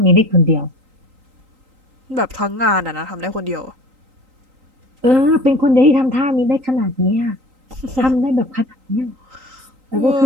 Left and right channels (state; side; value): late; left; 3.8 ms